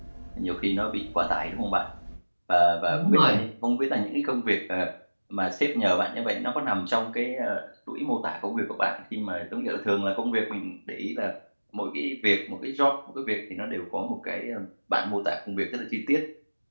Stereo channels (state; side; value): inverted; both; correlation -1.00